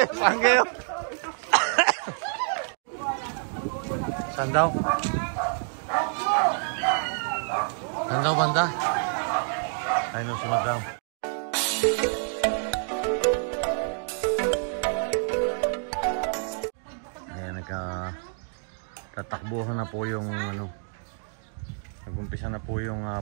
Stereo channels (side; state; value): left; silent; 60 dB below the other